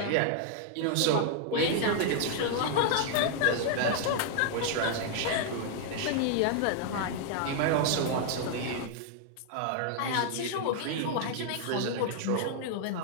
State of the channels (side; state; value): both; different; correlation 0.00